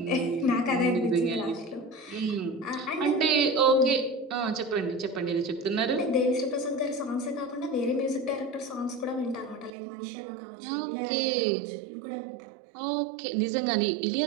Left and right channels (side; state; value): left; drops out; at 9.7 s